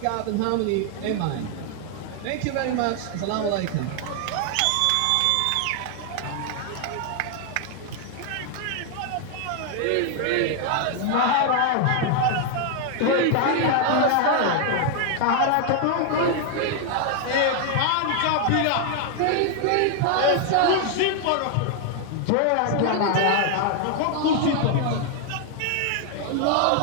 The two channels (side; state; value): both; different; correlation 0.00